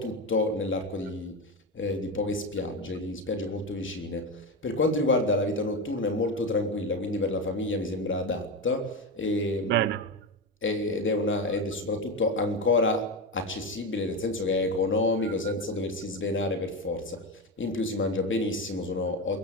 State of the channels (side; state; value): both; normal; correlation 0.17